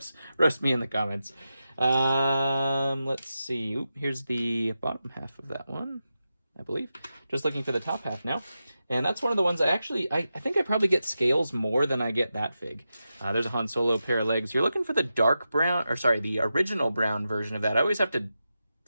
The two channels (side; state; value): both; inverted; correlation -0.90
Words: me in the comments. Let's see. Oop, here's the bottom half of that one, I believe. Just looking for the top half now. And that's one of the ones I think I probably get scales more than I get that fig. There's a Han Solo pair of legs. You're looking for the dark brown, or sorry, the original brown version of that. I always have to